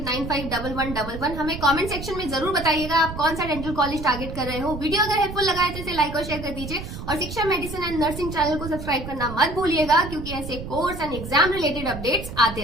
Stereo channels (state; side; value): noise; right; rumble, 9 dB below the sound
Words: हमें कमेंट सेक्शन में जरूर बताइएगा आप कौन सा डेंटल कॉलेज टारगेट कर रहे हो। वीडियो अगर हेल्पफुल लगा है तो इसे लाइक और शेयर कर दीजिए और शिक्षा मेडिसिन एंड नर्सिंग चैनल को सब्सक्राइब करना मत भूलिएगा, क्योंकि ऐसे course and exam related updates